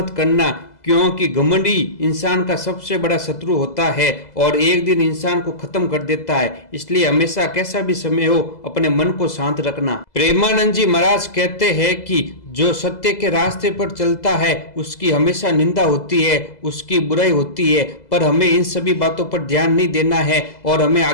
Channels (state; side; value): late; right; 2.0 ms